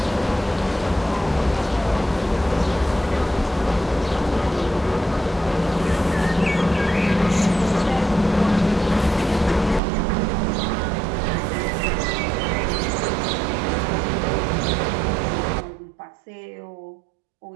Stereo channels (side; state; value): left; drops out; at 9.8 s